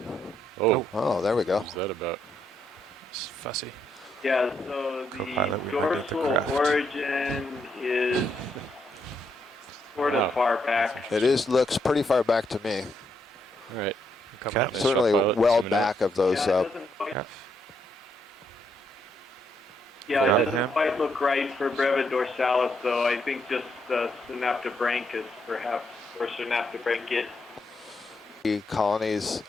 Oh, there we go. What's that about? It's fussy. Yeah, so the dorsal origin is sort of far back. It looks pretty far back to me. All right. Certainly well back of those. Yeah, it doesn't quite look right for Breva dorsalis, though. I think just synaptobranchus, perhaps, or synaptobranchid. Colonies,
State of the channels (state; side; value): normal; both; correlation 0.77